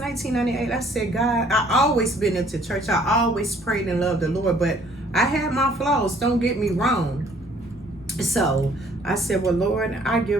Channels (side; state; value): both; normal; correlation 0.59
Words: I said, God, I always been into church. I always prayed and loved the Lord, but I had my flaws, don't get me wrong. So I said, well, Lord, I